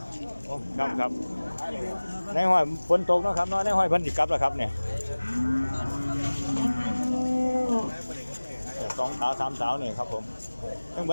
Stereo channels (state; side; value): inverted; both; correlation -1.00